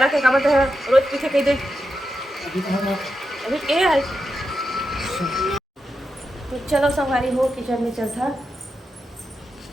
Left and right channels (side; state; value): both; normal; correlation 0.87